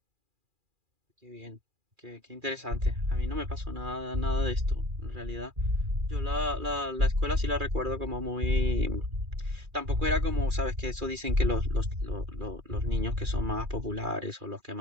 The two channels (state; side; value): late; left; 2.4 ms